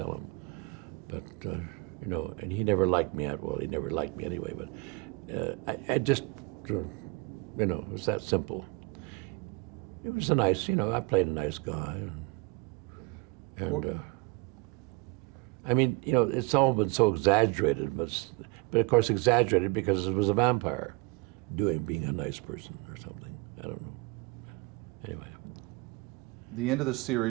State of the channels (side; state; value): left; quieter; 26.8 dB